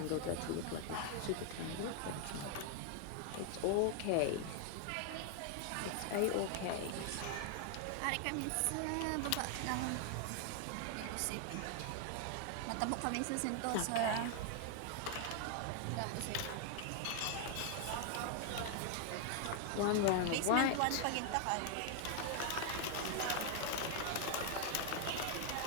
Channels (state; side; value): different; both; correlation 0.00